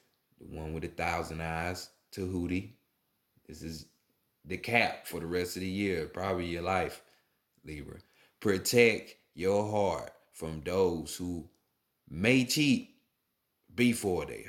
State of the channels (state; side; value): identical; both; correlation 1.00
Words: the one with 1,000 eyes, Tahuti. This is the cap for the rest of the year, probably your life, Libra. Protect your heart from those who may cheat before they